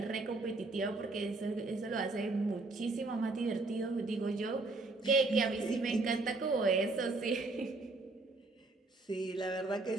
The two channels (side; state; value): left; quieter; 3.3 dB